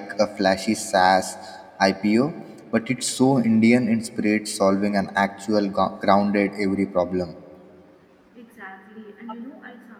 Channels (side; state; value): both; identical; correlation 1.00